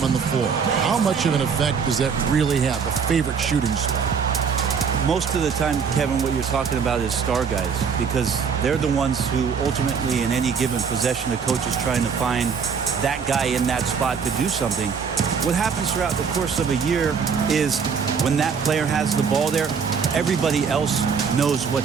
on the floor. How much of an effect does that really have, a favorite shooting spot? Most of the time, Kevin, what you're talking about is star guys, because they're the ones who ultimately in any given possession, the coach is trying to find that guy in that spot to do something. What happens throughout the course of a year is when that player has the ball there, everybody else knows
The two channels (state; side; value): quieter; left; 6.2 dB